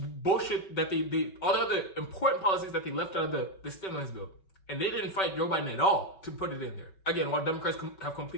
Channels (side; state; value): right; late; 5.2 ms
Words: that all the other important policies that they left out of the stimulus bill. And they didn't fight Joe Biden at all to put it in there. Again, while Democrats have